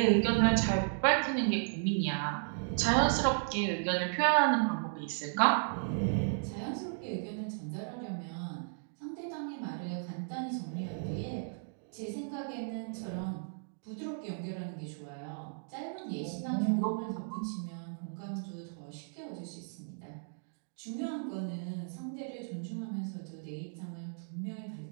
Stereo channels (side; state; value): left; silent; digital silence